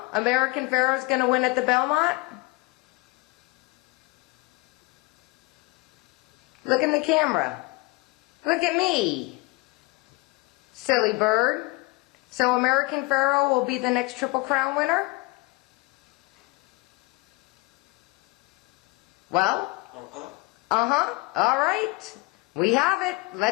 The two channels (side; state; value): right; quieter; 24.8 dB